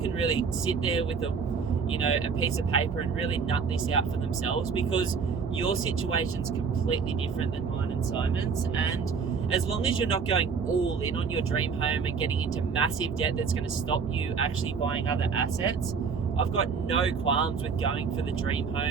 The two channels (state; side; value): quieter; left; 5.7 dB